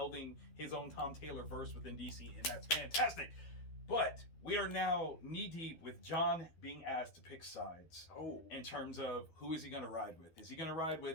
his own Tom Taylor verse within DC, and that's fantastic. But we are now knee deep with John being asked to pick sides. Oh. In terms of who is he going to ride with? Is he going to ride with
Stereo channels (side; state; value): right; late; 12 ms